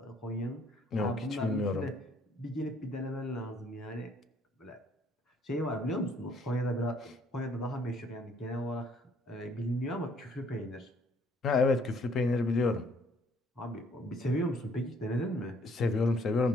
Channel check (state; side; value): normal; both; correlation 0.64